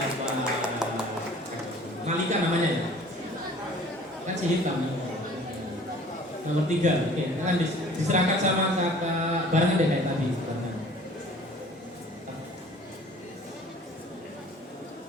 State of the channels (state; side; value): normal; both; correlation 0.49